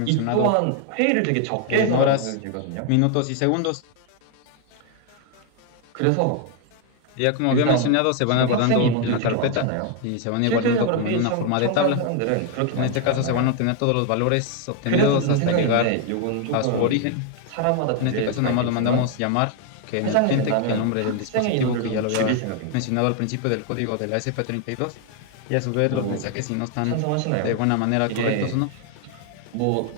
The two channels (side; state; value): both; different; correlation 0.01